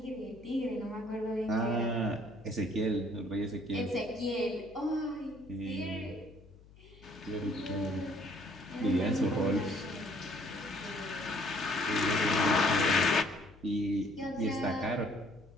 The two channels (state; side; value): noise; left; hum, 23 dB below the sound